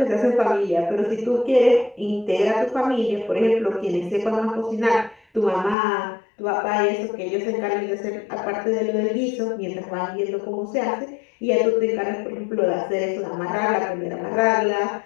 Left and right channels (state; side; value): drops out; right; at 5.8 s